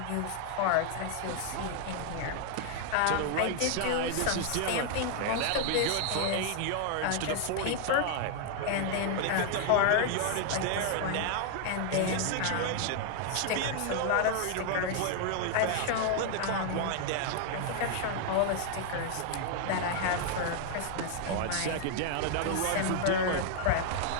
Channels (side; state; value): both; different; correlation 0.00